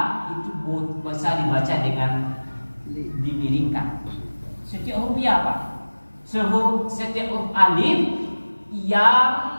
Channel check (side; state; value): both; inverted; correlation -1.00